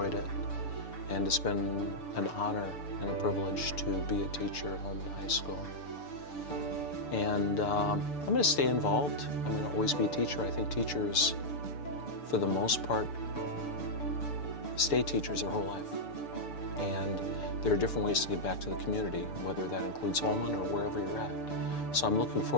it. And it's been an honor and a privilege to be a teacher at Holmen High School. And I'm going to stay involved. I'm going to always be a teacher. I think teachers, for the most part, stay teachers their whole life. And there are different ways to get back to the community, whether that includes Holmen or wherever you're at. So I'm looking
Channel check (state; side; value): late; right; 6.9 ms